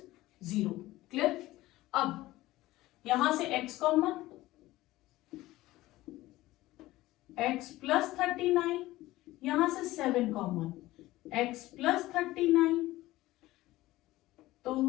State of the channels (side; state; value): right; quieter; 17.4 dB